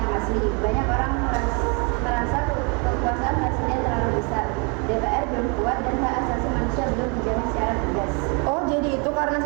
asli. Banyak orang merasa kekuasaan presiden terlalu besar, DPR belum kuat, dan hak asasi manusia belum dijamin secara tegas. Oh, jadi itu karena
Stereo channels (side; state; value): left; quieter; 33.9 dB